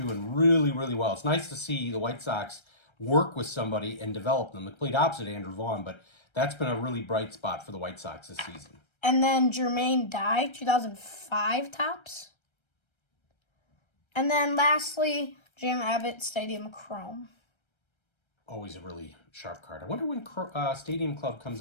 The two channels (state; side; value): late; right; 1.3 ms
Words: really, really well. It's nice to see the White Sox work with somebody and develop them. The complete opposite of Andrew Vaughn, but that's been a really bright spot for the White Sox this season. And then Jermaine Dye, 2005 tops. And then lastly, Jim Abbott, Stadium Chrome. Always a really sharp card. I wonder when Stadium Club